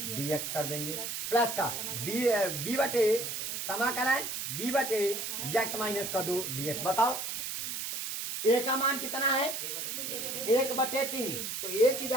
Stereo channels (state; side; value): noise; right; hiss, 4 dB below the sound